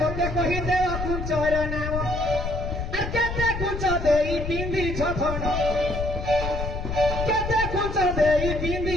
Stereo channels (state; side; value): noise; left; rumble, 5 dB below the sound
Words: मोते कहि दे कुंचर नाम आर केते कुंच देई पिंदी छथन केते कुंच देई